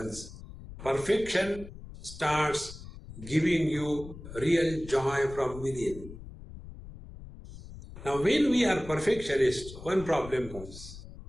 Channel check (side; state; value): left; noise; rumble, 14 dB below the sound